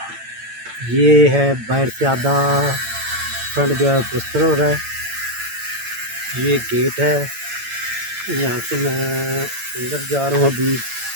ये है बाहर से आधा फ्रंट जो है प्लस्तर हो रहा है। ये गेट है, यहाँ से मैं अंदर जा रहा हूँ अभी।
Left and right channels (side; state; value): left; late; 8.9 ms